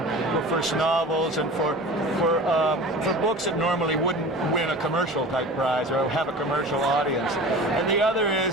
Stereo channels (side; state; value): both; normal; correlation 0.37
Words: for first novels and for books that normally wouldn't win a commercial type prize or have a commercial audience. And the other